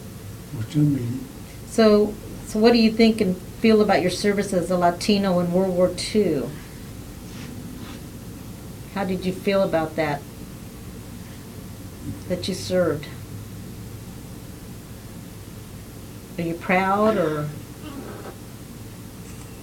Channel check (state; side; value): identical; both; correlation 1.00